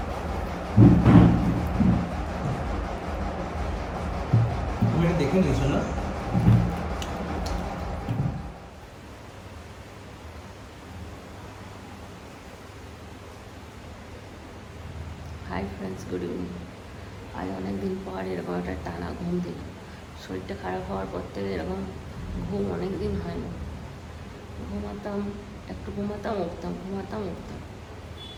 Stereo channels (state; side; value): identical; both; correlation 1.00